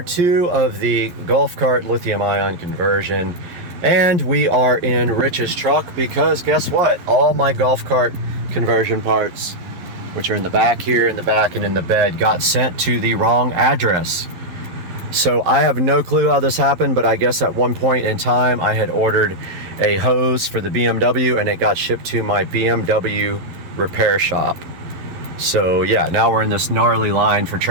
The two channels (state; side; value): late; left; 11 ms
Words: 2 of the golf cart lithium-ion conversion, and we are in Rich's truck because guess what? All my golf cart conversion parts, which are in the back here, in the back, and in the bed, got sent to the wrong address. So I have no clue how this happened, but I guess at one point in time I had ordered a hose for the BMW and it got shipped to my BMW repair shop. So yeah, now we're in this gnarly line for